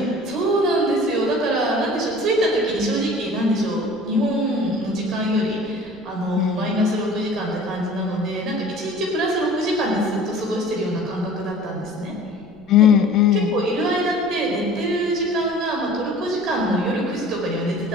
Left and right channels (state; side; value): noise; right; rumble, 26 dB below the sound